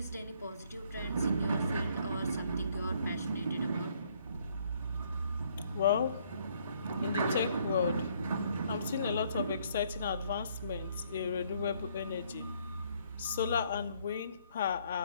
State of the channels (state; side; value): inverted; both; correlation -0.66